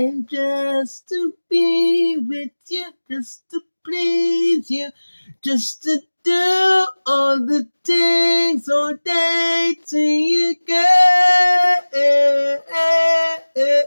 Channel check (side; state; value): both; inverted; correlation -1.00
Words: just to be with you, just to please you, just to do all the things all day to you, girl.